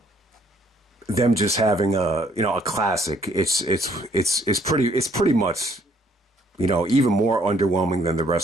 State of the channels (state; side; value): normal; both; correlation 0.65